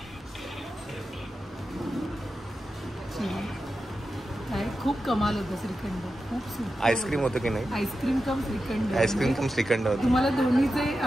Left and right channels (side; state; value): both; normal; correlation 0.91